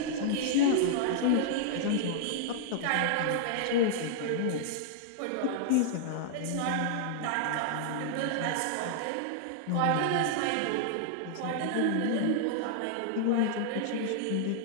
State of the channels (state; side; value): different; both; correlation -0.01